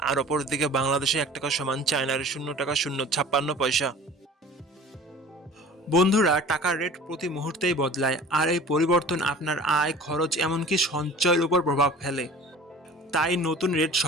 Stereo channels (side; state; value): both; normal; correlation 0.44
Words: আর অপরদিকে বাংলাদেশে 1 টাকা সমান চায়নার 0 টাকা 056 পয়সা। বন্ধুরা, টাকার রেট প্রতি মুহূর্তেই বদলায়, আর এই পরিবর্তন আপনার আয়, খরচ, এমনকি সঞ্চয়ের উপর প্রভাব ফেলে। তাই নতুন রেট